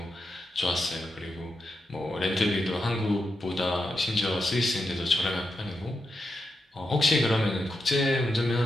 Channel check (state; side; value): normal; both; correlation 0.86